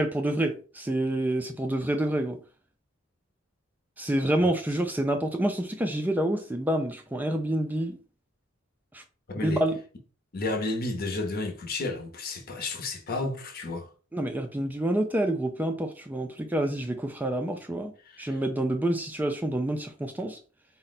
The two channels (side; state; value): both; normal; correlation 0.77